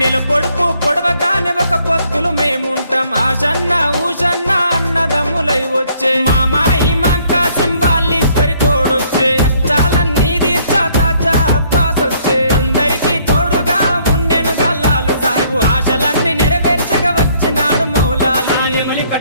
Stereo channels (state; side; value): inverted; both; correlation -0.65